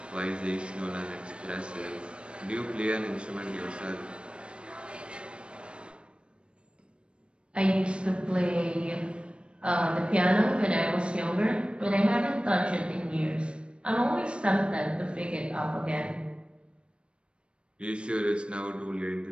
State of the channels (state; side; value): late; left; 0.057 ms